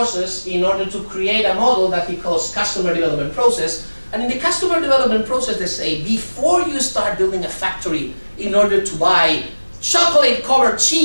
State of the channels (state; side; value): inverted; both; correlation -1.00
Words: in order to create a model that he calls customer development process. And in the customer development process, they say, before you start building a factory in order to buy chocolate-covered